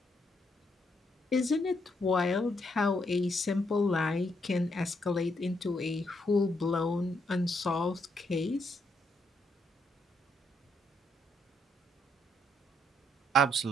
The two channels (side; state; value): both; normal; correlation 0.75